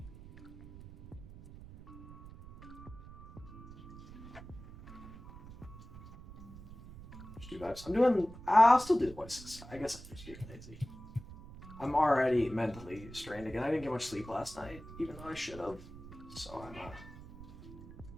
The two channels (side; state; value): right; noise; rumble, 16 dB below the sound